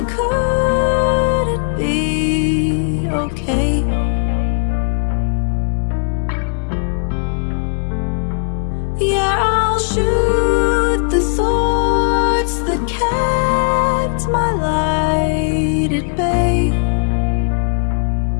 couldn't be okay. Yeah, I'll shoot the thoughts that kept my light at bay.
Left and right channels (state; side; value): silent; right; digital silence